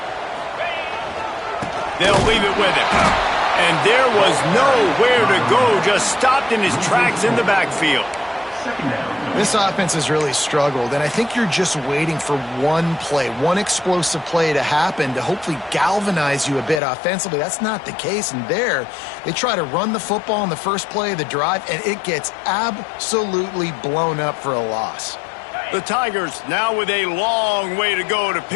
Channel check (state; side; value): drops out; right; at 16.8 s